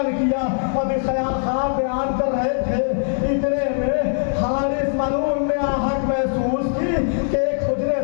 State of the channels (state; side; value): silent; right; digital silence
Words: کیا۔ ابھی خواب بیان کر رہے تھے، اتنے میں حارث ملعون نے آہٹ محسوس کی کہ ایک حجرے